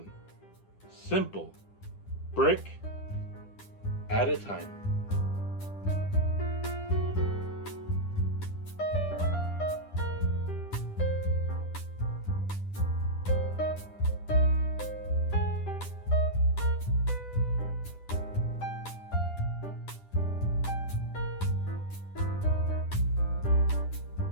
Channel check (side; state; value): right; late; 10 ms